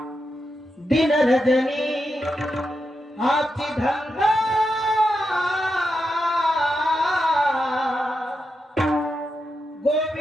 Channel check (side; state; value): both; normal; correlation 0.86